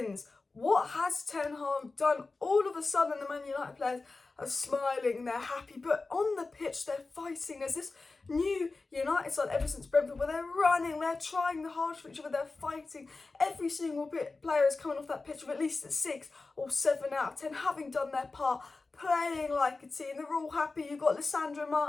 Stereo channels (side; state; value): right; quieter; 3.7 dB